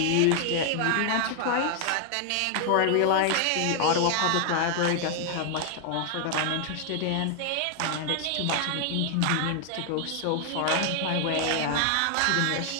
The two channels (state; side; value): different; both; correlation 0.00